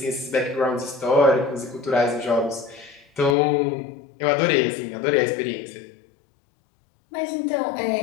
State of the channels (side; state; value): right; drops out; at 3.4 s